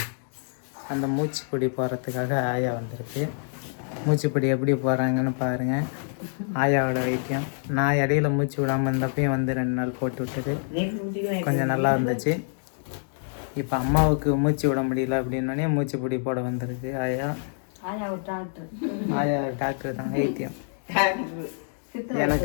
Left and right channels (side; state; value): right; silent; digital silence